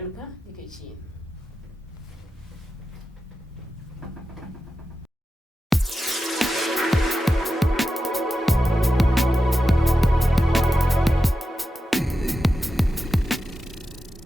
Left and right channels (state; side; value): normal; both; correlation 0.91